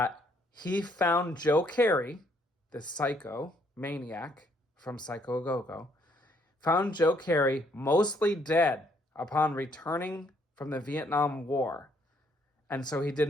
he found Joe Carey, the psycho maniac from Psycho Go-Go, found Joe Carey mostly dead upon returning from the Vietnam War. And so he did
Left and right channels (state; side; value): normal; both; correlation 0.68